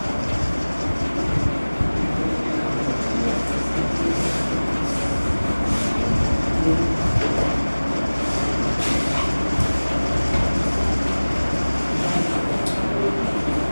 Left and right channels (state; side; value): inverted; both; correlation -1.00